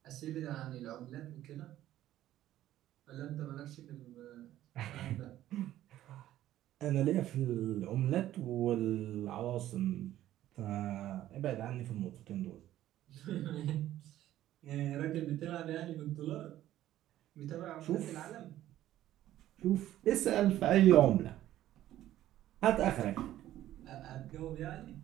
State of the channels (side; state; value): left; quieter; 13.4 dB